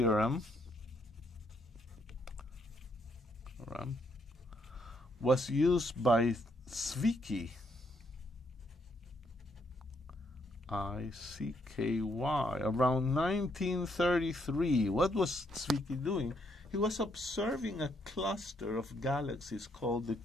was used by Zwicky, I-C-K-Y, around 1933. What was Zwicky doing? He was observing a cluster of galaxies called the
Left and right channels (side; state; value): both; normal; correlation 0.73